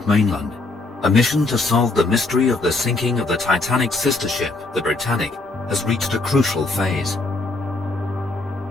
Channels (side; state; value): right; quieter; 3.3 dB